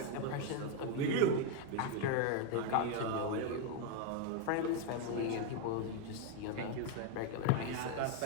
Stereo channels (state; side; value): different; both; correlation 0.01